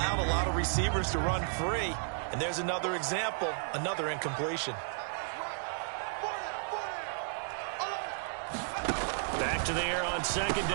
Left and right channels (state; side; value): silent; left; digital silence